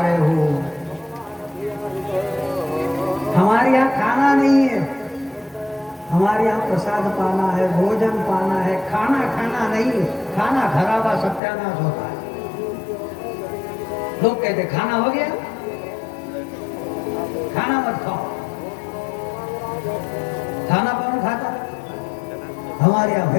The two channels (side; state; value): right; drops out; at 11.4 s